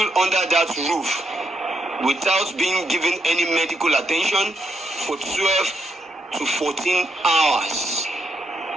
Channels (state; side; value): normal; both; correlation 0.79